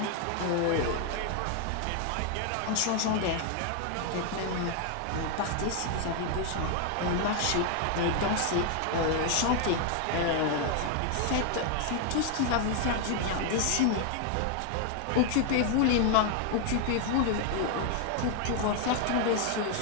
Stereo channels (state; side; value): different; both; correlation 0.00